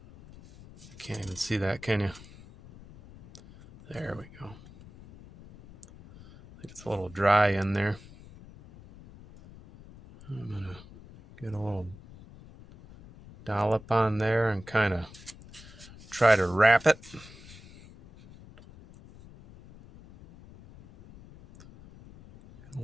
You can't even see that, can you? There we go. I think it's a little dry in there. I'm gonna get a little dollop on there and kind of try to wrap it. A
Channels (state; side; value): noise; left; rumble, 20 dB below the sound